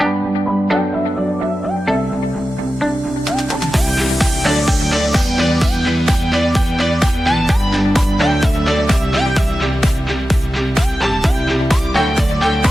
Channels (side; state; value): both; normal; correlation 0.93